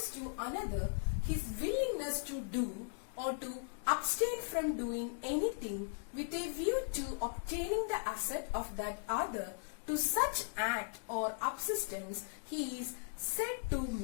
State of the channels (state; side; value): silent; right; digital silence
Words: to another his willingness to do or to abstain from doing anything with a view to obtaining the asset of that other, to such act or subsistence he is said to